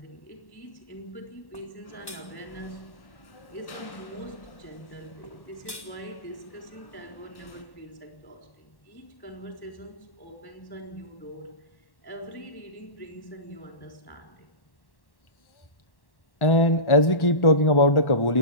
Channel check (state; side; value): late; right; 1.1 ms